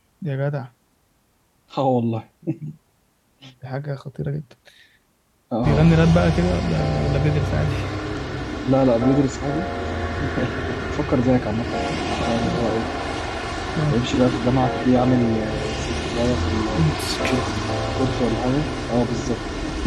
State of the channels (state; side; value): identical; both; correlation 1.00